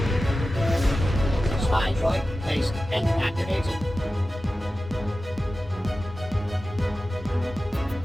Spy droid placed and activated.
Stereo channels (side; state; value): both; normal; correlation 0.94